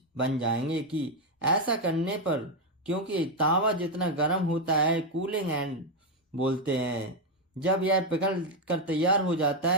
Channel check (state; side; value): normal; both; correlation 0.05